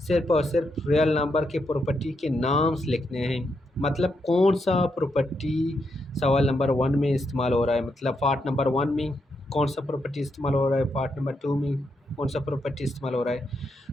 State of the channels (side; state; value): both; normal; correlation 0.81